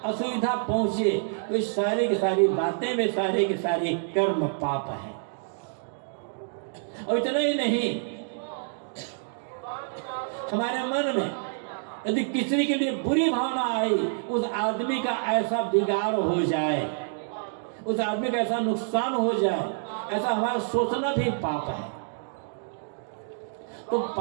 असुविधा पहुंचे, तो सारी की सारी बातें में सारे के सारे कर्म पाप है। और इतना ही नहीं, हमारे मन में यदि किसी के लिए बुरी भावना आई, उस आदमी का ऐसा बिगाड़ हो जाए, उस आदमी का ऐसा नुकसान हो जाए, ऐसा हमारा सोचना भी पाप है। तो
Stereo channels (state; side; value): silent; left; digital silence